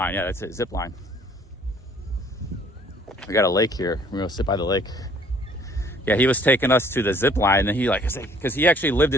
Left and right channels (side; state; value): both; normal; correlation 0.58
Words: Yeah, that's it, zip line. We got a lake here. We're gonna sit by the lake. Yeah, he was taking us to the zip line, and he because he actually lived